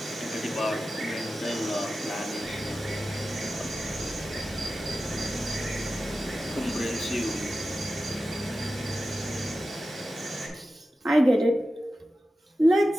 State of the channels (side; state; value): both; normal; correlation 0.93